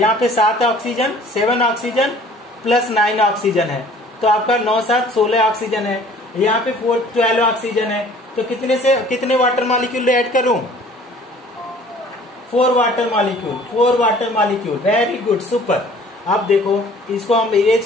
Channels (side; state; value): both; normal; correlation 0.52